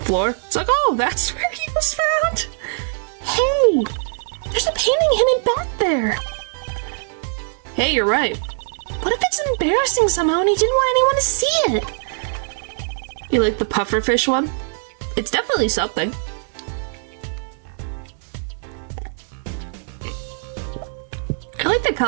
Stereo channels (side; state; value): left; silent; 65 dB below the other